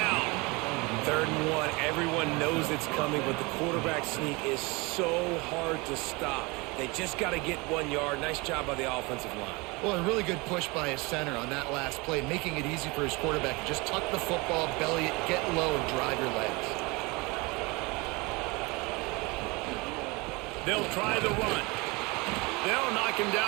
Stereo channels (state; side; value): quieter; left; 25.9 dB